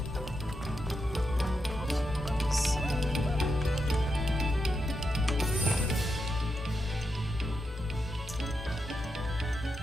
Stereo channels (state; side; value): normal; both; correlation 0.85